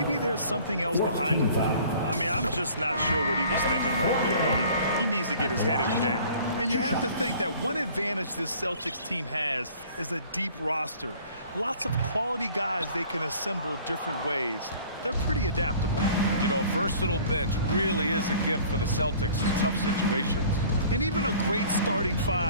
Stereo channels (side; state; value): both; inverted; correlation -0.50